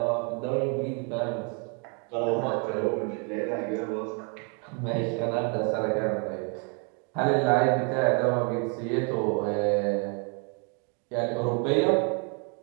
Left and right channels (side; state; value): left; quieter; 37.7 dB